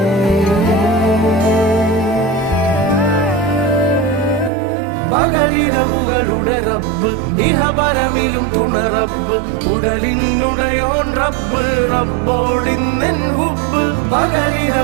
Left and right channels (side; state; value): left; drops out; at 4.5 s